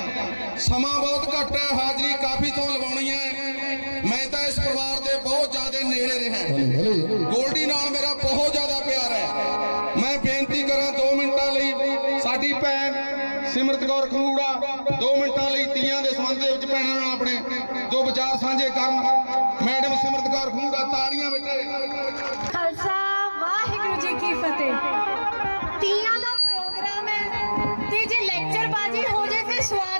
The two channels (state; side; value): inverted; both; correlation -1.00